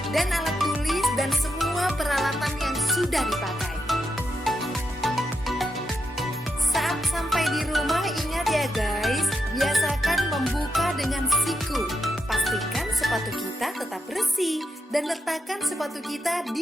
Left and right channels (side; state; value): both; normal; correlation 0.83